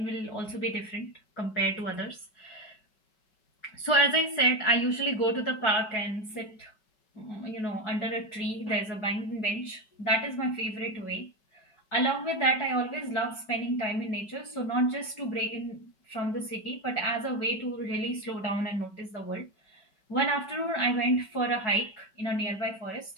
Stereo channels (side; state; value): right; late; 5.3 ms